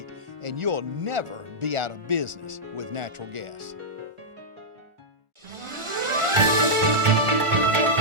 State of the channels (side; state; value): left; late; 1.4 ms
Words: and you'll never be out of business with natural gas.